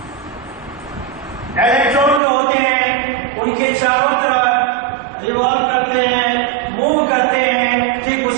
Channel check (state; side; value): drops out; left; at 2.2 s